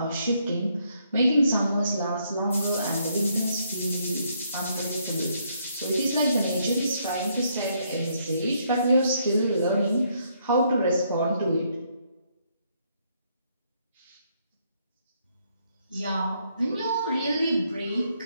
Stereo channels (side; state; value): both; inverted; correlation -0.72